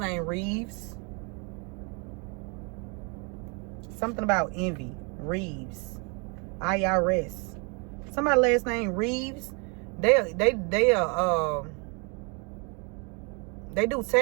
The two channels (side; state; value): left; quieter; 33.8 dB